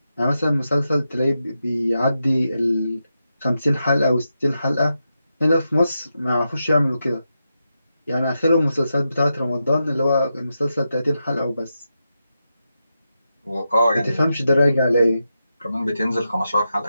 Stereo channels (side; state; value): both; inverted; correlation -0.88